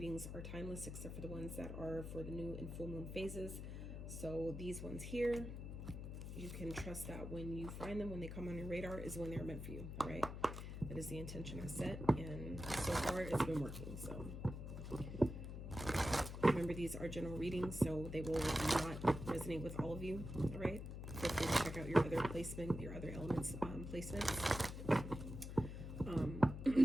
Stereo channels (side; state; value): left; noise; hum, 7 dB below the sound